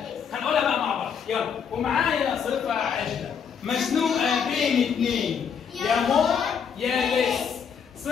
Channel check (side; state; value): right; quieter; 7.1 dB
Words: هنقولها بقى مع بعض. يلا. ومعايا صفه عجله مزنوقه بين اثنين، يا مور يا لس.